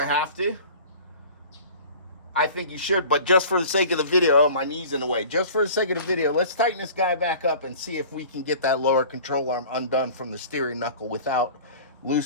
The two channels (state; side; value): inverted; both; correlation -0.42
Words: have to. I think you should, but just for the sake of the video, oh, my knee's in the way. Just for the sake of the video, let's tighten this guy back up and see if we can get that lower control arm undone from the steering knuckle without